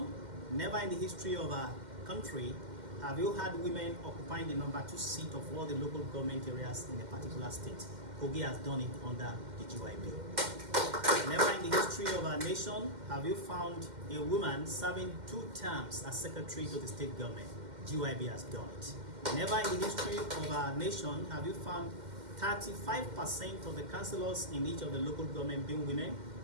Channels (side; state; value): left; late; 2.1 ms